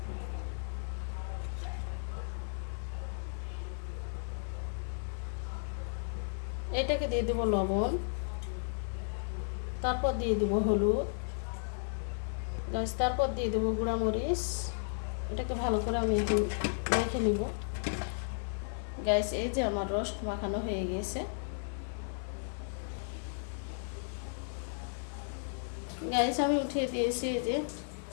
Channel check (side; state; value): right; silent; 55 dB below the other